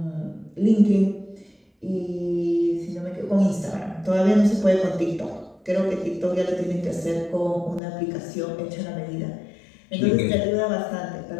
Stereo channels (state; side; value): drops out; right; at 7.8 s